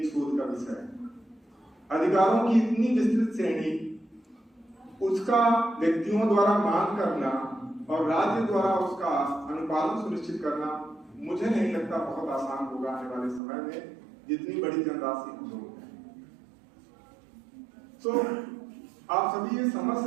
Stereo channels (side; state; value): left; drops out; at 13.4 s